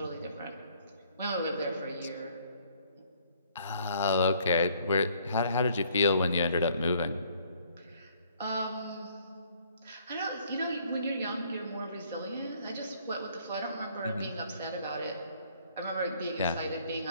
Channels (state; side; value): inverted; both; correlation -0.63